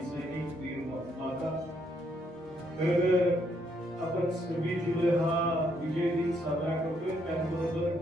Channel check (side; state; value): both; normal; correlation 0.73